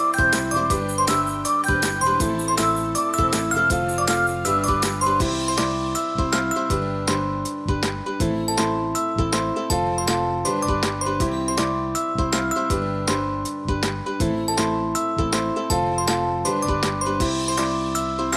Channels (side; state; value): both; identical; correlation 1.00